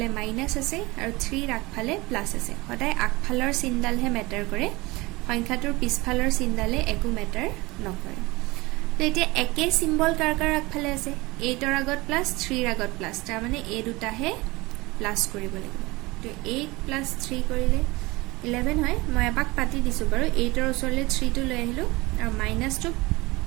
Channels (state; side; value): quieter; left; 22.4 dB